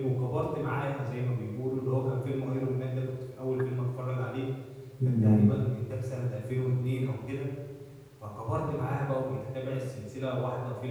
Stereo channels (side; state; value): both; identical; correlation 1.00